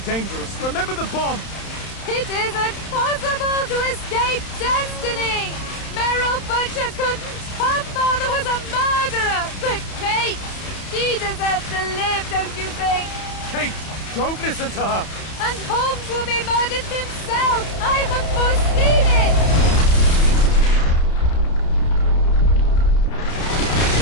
dangerous. Remember the bomb! It isn't possible to escape destiny! Meryl Butcher couldn't. Her father was a murderer. But Kate, she deserves to live, don't you think? Kate, don't listen to her! And Holmes will be murdered himself. I have foreseen it.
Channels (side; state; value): right; late; 31 ms